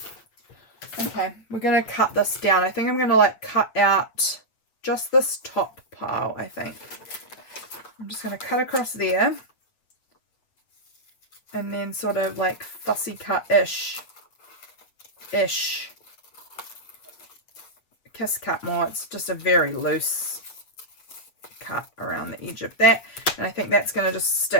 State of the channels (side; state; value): right; late; 8.3 ms